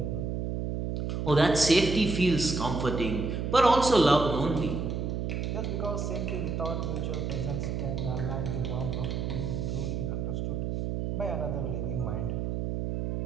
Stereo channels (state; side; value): noise; right; hum, 2 dB below the sound